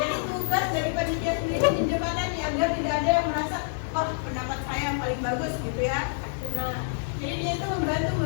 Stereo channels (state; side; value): silent; right; digital silence